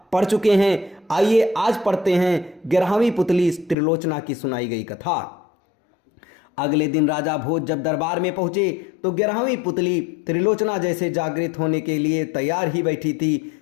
पढ़ चुके हैं। आइए आज पढ़ते हैं 11वीं पुतली त्रिलोचना की सुनाई गई कथा। अगले दिन राजा भोज जब दरबार में पहुंचे तो 11वीं पुतली त्रिलोचना जैसे जागृत होने के लिए तैयार ही बैठी थी।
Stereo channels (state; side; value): drops out; right; at 3.8 s